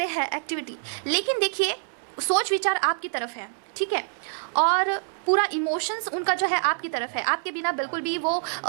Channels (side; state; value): left; silent; 61 dB below the other